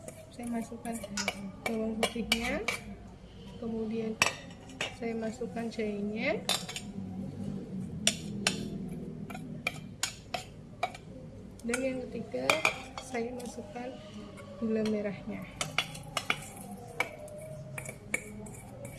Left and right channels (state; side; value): identical; both; correlation 1.00